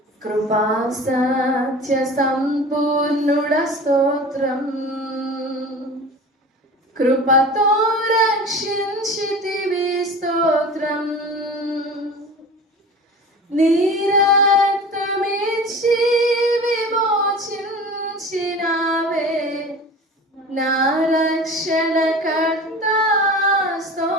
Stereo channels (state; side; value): normal; both; correlation 0.37